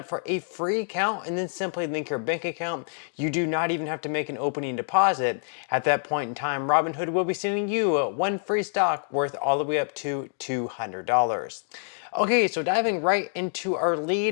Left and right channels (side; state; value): right; silent; digital silence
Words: for a free account and then simply link your bank account. You do not even have to make an opening deposit. At that point in time, Robinhood will be sending you one free stock worth all the way up to $200. Okay, so diving right into our